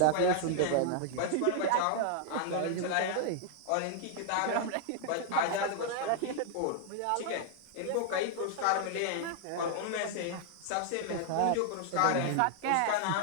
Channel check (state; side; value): different; both; correlation 0.00